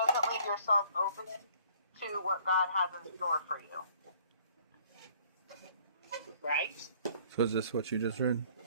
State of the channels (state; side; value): inverted; both; correlation -0.58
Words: leave yourself open to what God has in store for you. Right? So is this what you just read?